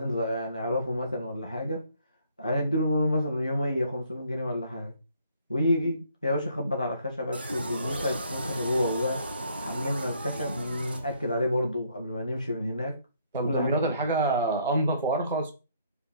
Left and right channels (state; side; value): inverted; both; correlation -0.66